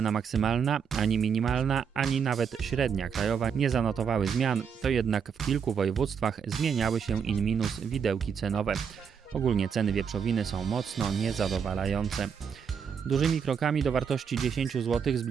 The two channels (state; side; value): quieter; left; 6.9 dB